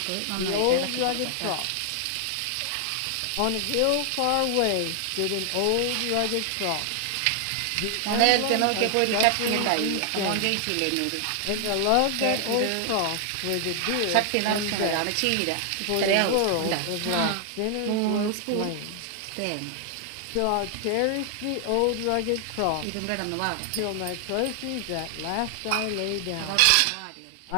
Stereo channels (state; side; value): different; both; correlation 0.00